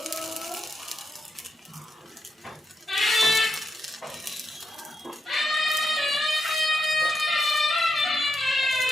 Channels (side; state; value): both; normal; correlation 0.84